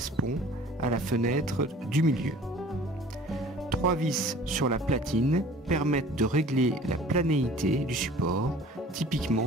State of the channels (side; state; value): both; normal; correlation 0.48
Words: à la fenêtre du milieu. 3 vis sur la platine permettent de régler la planéité du support,